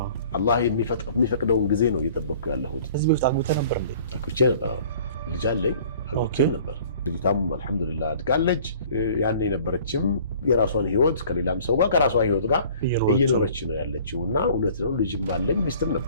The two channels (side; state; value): both; inverted; correlation -0.51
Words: አላህ የሚፈቅደውን ጊዜ ነው እየጠበቅኩ ያለሁት። ከዚህ በፊት አግብተህ ነበር እንዴ? አግብቼ ነበር። ልጅ አለኝ፣ አግብቼም ነበር። ልጅቷም አልሐምዱሊላህ አድጋለች። ያን የነበረችም የራሷን ህይወት ከሌላም ሰው ጋር ከራሷ ህይወት ጋር እየኖረች ነው ያለችው እና እውነት ነው ልጅም አለኝ ሚስትም